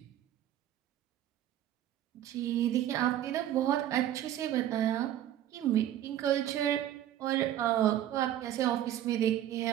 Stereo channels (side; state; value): left; quieter; 12.0 dB